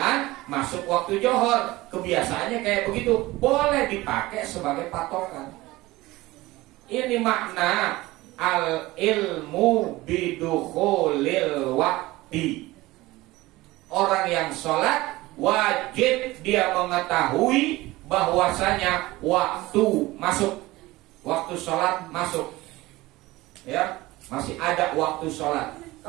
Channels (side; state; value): left; quieter; 19.2 dB